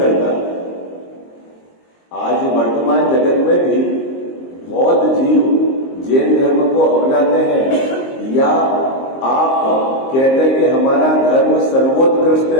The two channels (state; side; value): late; right; 23 ms